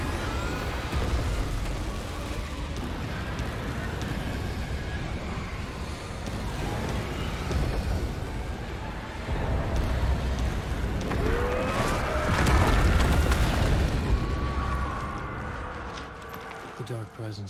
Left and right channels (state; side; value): identical; both; correlation 1.00